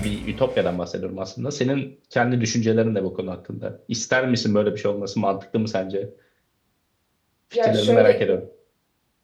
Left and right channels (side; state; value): both; identical; correlation 1.00